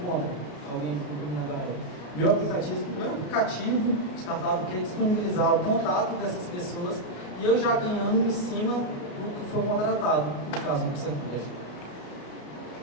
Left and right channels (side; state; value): right; late; 33 ms